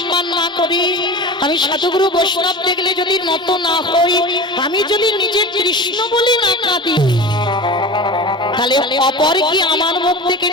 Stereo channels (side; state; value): both; normal; correlation 0.32